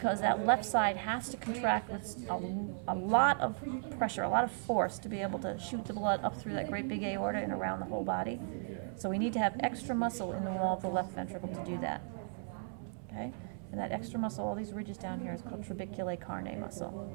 that left side has to contract with a lot of pressure, a lot of force to be able to shoot the blood up through that great big aorta and around the whole body. So we need to have extra muscle in the wall of the left ventricle to do that. Okay? And that extra muscle, all these ridges down here, is called trabeculae carnae muscle.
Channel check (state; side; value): silent; left; 54 dB below the other